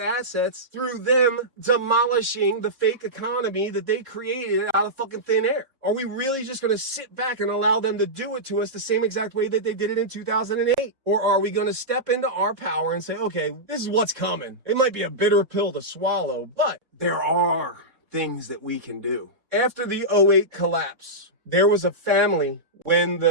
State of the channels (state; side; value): late; left; 3.7 ms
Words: through them demolishing the fake economy that they created out of fucking thin air. Are we really just going to sit back and allow them to do it to us the same exact way that they did it in 2008? Or are we going to step into our power and say, okay, this is what's coming. It might be a bitter pill to swallow, but there are things that we can do. After the 2008 collapse, there was a family, when